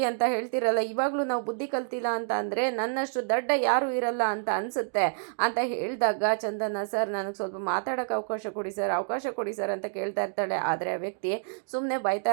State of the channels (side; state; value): left; silent; digital silence